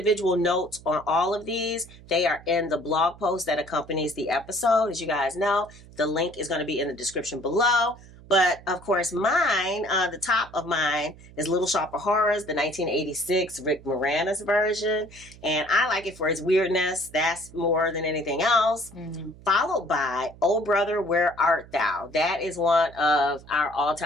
notes on all of these, they are in the blog post that accompanies the episode. As you guys know, the link is going to be in the description below. But of course, mine, the top of mine is Little Shop of Horrors, the 1986 Rick Moranis version. And I like it for its weirdness. That's more than anything else. Mm-hmm. Followed by Oh Brother, Where Art Thou? That is one of our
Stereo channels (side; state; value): right; noise; hum, 21 dB below the sound